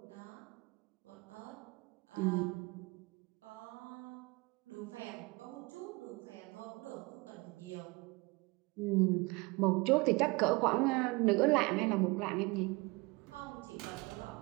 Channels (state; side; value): quieter; left; 25.6 dB